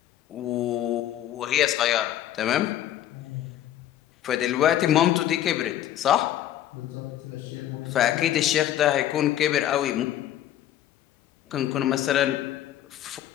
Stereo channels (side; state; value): right; quieter; 11.9 dB